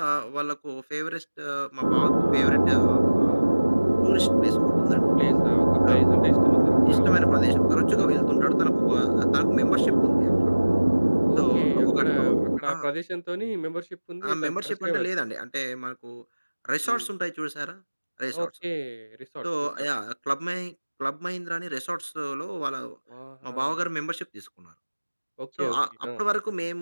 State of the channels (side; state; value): both; inverted; correlation -1.00